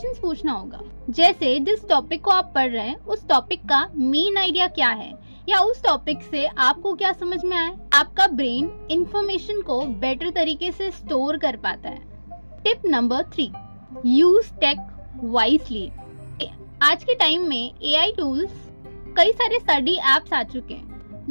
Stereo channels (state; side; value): inverted; both; correlation -1.00